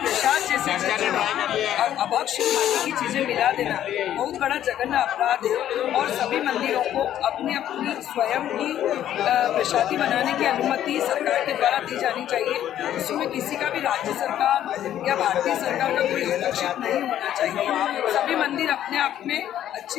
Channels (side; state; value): right; quieter; 11.4 dB